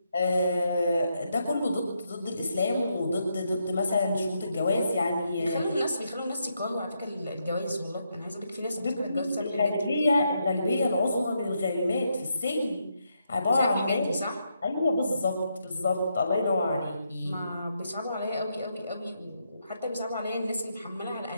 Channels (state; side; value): inverted; both; correlation -0.80